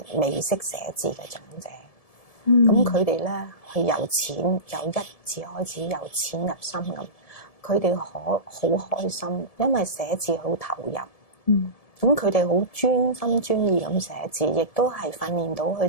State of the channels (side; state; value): right; late; 1.7 ms